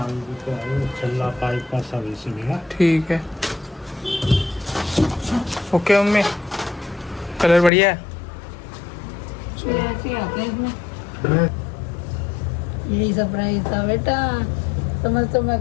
रुपये है। छल्ला पाइप का सर्विसिंग है। ठीक है, ओके मम्मी। कलर बढ़िया है। ऐसे ही आते हैं इसमें। यही सरप्राइज था बेटा, समझ तो मैं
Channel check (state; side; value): drops out; right; at 7.7 s